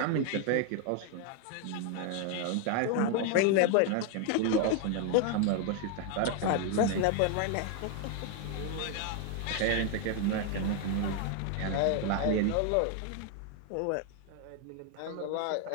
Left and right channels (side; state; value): both; different; correlation 0.00